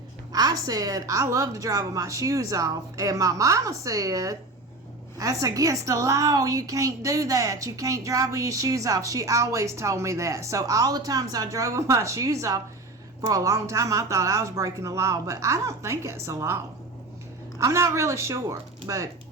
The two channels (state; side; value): quieter; left; 3.0 dB